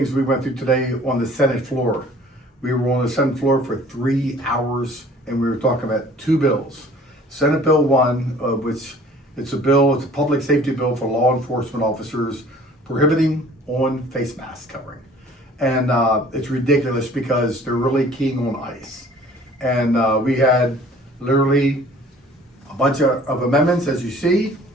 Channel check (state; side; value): normal; both; correlation 0.51